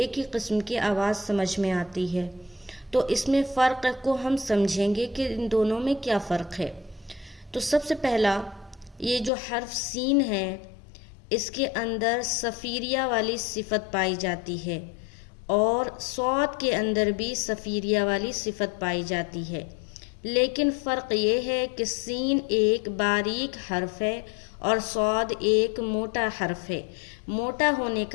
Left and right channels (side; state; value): right; drops out; at 9.3 s